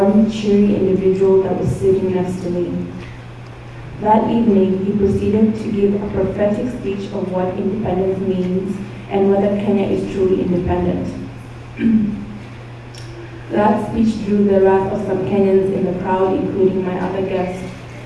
cheery individual that was sitting next to me. That evening, he proceeded to give a prophetic speech of what independence means and whether Kenya is truly independent. That speech drew the wrath of some Kenyans in the crowd, including my other guest,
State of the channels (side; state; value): both; identical; correlation 1.00